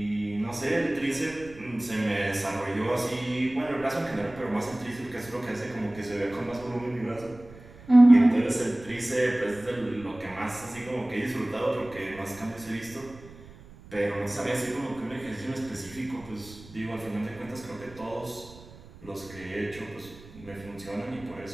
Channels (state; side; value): noise; right; rumble, 20 dB below the sound